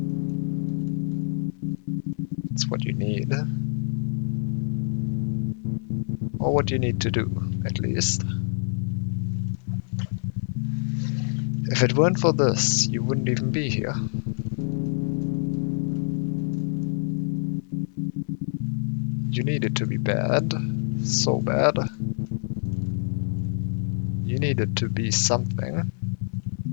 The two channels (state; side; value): silent; right; 59 dB below the other